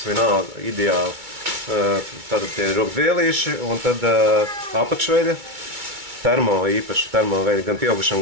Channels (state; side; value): late; left; 2.3 ms